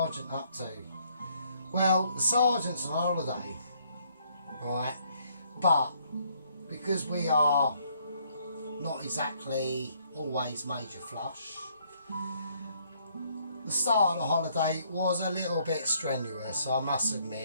up to? Well, the sergeant's on holiday, right? But because we are not exactly always major flush, the start of the holiday was a little bit strenuous, I must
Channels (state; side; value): inverted; both; correlation -0.67